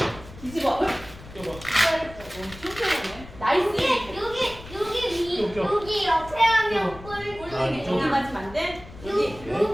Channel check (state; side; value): noise; left; rumble, 17 dB below the sound